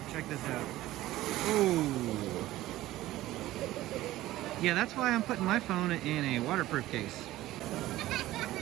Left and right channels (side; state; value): left; quieter; 16.0 dB